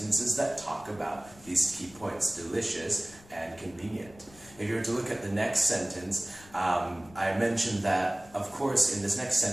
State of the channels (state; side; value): noise; left; rumble, 23 dB below the sound